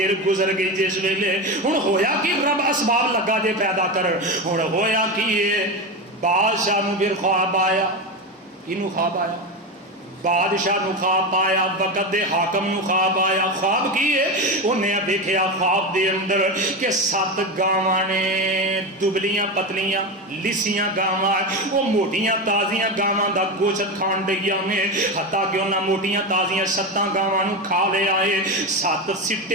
گزر گئی. جس ویلے ہن ہویا کہ رب اسباب لگا دے پیدا کر. ہن ہویا کہ یہ بادشاہ نو پھر خواب آیا. کینو خواب آیا؟ بادشاہ نو خواب آیا، وقت دے حاکم نو خواب آیا. خواب کی ہے؟ انہیں دیکھیا خواب دے اندر کہ 7 گاواں نے، دبلیاں پتلیاں لسیاں گاواں، وہ موٹیاں تازیاں گاواں دا گوشت کھان ڈیاں نے. حتیٰ کہ انہاں موٹیاں تازیاں 7 گاواں نو کھا لے آئے. 7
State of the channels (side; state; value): both; normal; correlation 0.18